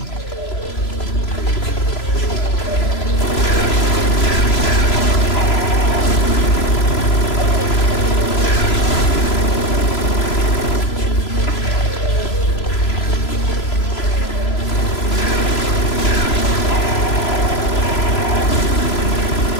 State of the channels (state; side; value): late; right; 3.0 ms